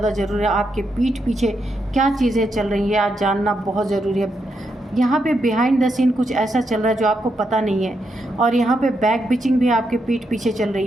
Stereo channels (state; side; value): normal; both; correlation 0.82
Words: ज़रूरी है। आपके पीठ पीछे क्या चीज़ें चल रही है आज जानना बहुत ज़रूरी है। यहाँ पे बिहाइंड द सीन कुछ ऐसा चल रहा है जो आपको पता नहीं है, और यहाँ पे बैक बिचिंग भी आपके पीठ पीछे चल